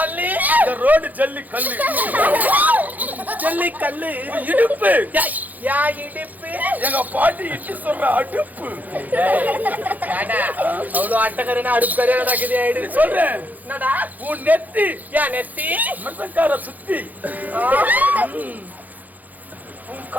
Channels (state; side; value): late; left; 0.081 ms